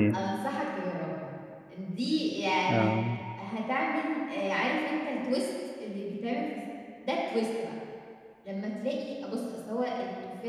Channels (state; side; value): identical; both; correlation 1.00